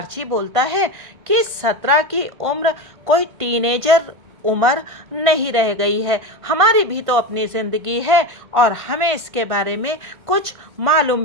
बोलता है कि 17 की उम्र कोई टीनेजर उम्र नहीं रह गई है। हमारी भी तो अपनी ज़िंदगी है और हमें इसके बारे में कुछ मालूम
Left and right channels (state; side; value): late; left; 1.5 ms